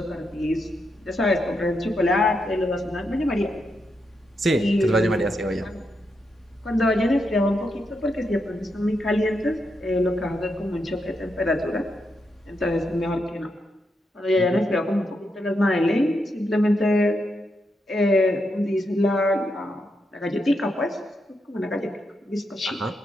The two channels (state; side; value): normal; both; correlation 0.83